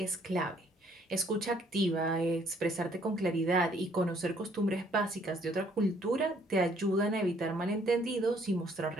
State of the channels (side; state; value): both; normal; correlation 0.64